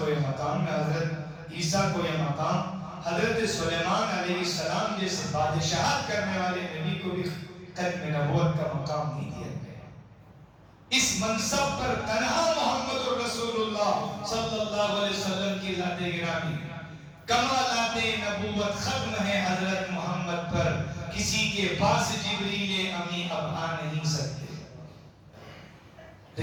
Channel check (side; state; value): both; identical; correlation 1.00